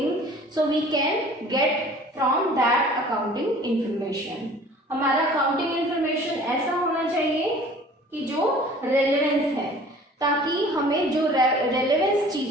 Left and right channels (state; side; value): normal; both; correlation 0.48